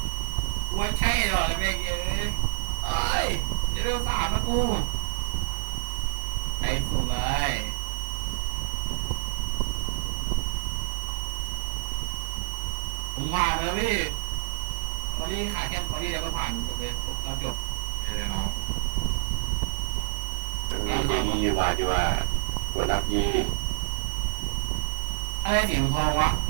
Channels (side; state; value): left; silent; digital silence